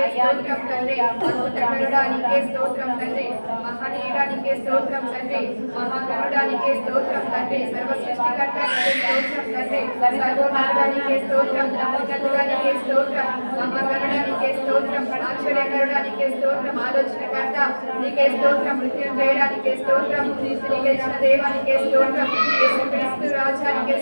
స్తోత్రం తండ్రి అద్భుతకరుడానికే స్తోత్రం తండ్రి మహనీయుడానికే స్తోత్రం తండ్రి మహాగరుడానికే స్తోత్రం తండ్రి సర్వ సృష్టికర్తానికే స్తోత్రం తండ్రి సర్వోన్నతుడానికే స్తోత్రం నమ్మకస్తుడానికే స్తోత్రం మహాగరుడానికే స్తోత్రం ఆశ్చర్యకరుడానికే స్తోత్రం ఆలోచనకర్త నీకే స్తోత్రం మృత్యుంజయుడానికే స్తోత్రం నీతిని గెలిచిన దేవానికే స్తోత్రం యేసుక్రీస్తు రాజానికే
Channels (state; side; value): inverted; both; correlation -1.00